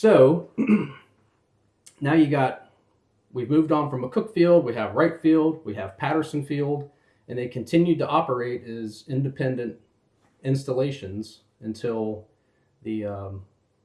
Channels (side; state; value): both; identical; correlation 1.00